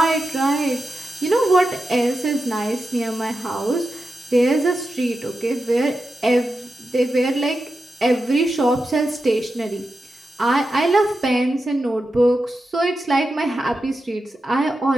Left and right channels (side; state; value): both; normal; correlation 0.90